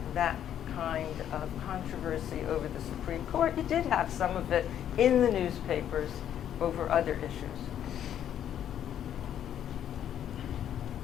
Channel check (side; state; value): right; quieter; 10.1 dB